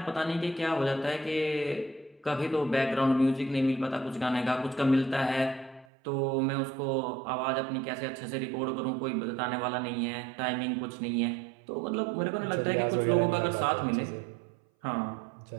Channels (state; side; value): drops out; left; at 5.9 s